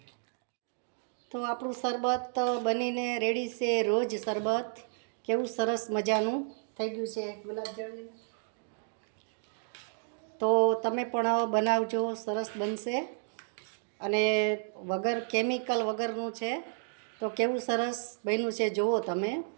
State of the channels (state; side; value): silent; left; digital silence